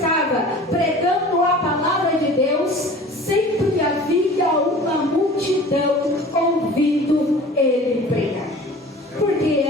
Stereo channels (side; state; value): both; normal; correlation 0.43